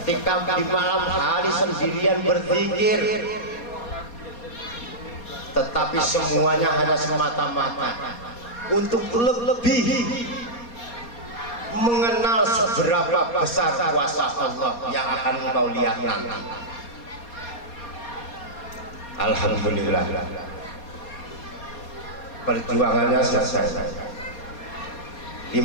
di malam hari sendirian berzikir, tetapi semuanya hanya semata-mata untuk lebih mengenal seberapa besar kuasa Allah yang akan engkau lihat nanti. Alhamdulillah, perjuangannya selesai. 15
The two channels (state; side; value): late; right; 4.2 ms